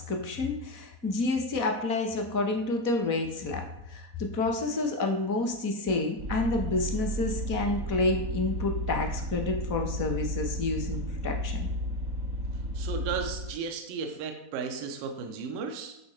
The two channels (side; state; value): left; late; 4.1 ms